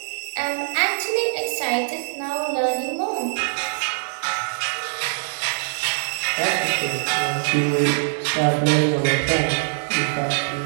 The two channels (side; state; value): left; silent; digital silence